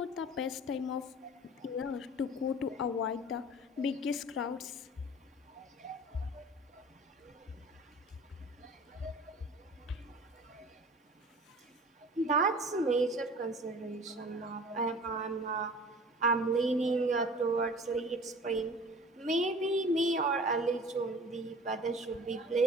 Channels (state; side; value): normal; both; correlation 0.43